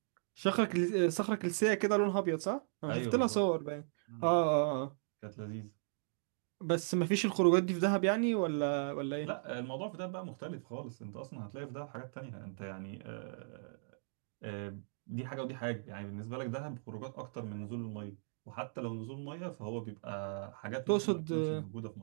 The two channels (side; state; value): left; silent; digital silence